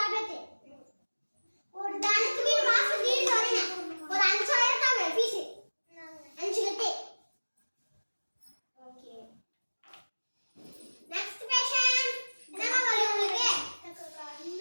ஒரு தானத்துக்கு மாசம் தீர்ந்து வரீங்க. ஒரு 5000 தாங்க ஃபீஸ். 5 கட்டு. ஓகே. Next patient. என்னமா வலி உங்களுக்கு? எனக்கு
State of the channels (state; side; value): inverted; both; correlation -1.00